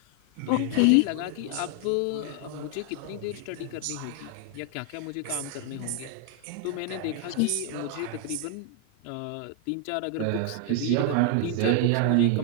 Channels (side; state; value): both; different; correlation 0.00